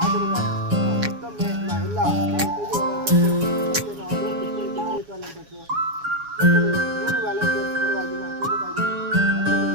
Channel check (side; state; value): left; late; 7.1 ms